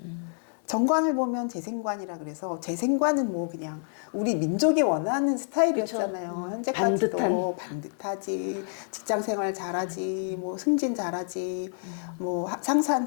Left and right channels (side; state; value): right; silent; 59 dB below the other